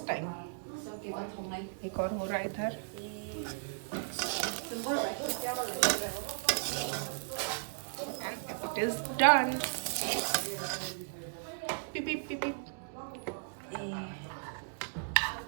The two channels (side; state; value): left; silent; digital silence